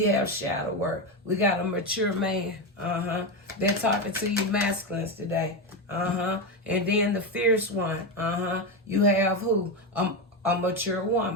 have shadow work. We got a mature man. They're talking to you masculines today. And then the fierce one. You have who? A mature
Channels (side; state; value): both; normal; correlation 0.13